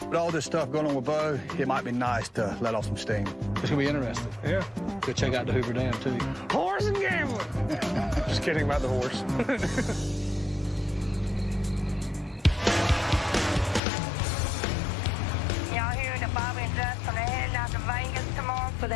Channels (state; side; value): drops out; right; at 13.8 s